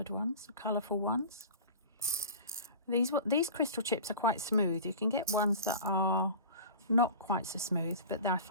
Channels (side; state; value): both; inverted; correlation -0.36